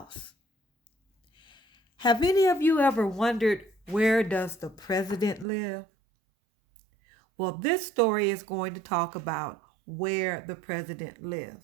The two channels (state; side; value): drops out; left; at 5.5 s